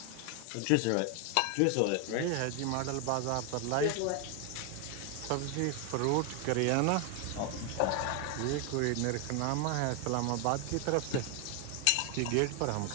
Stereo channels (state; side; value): different; both; correlation 0.01